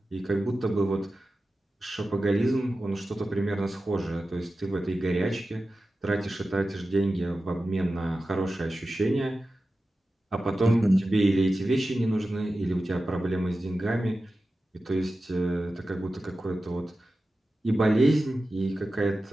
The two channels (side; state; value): both; normal; correlation 0.94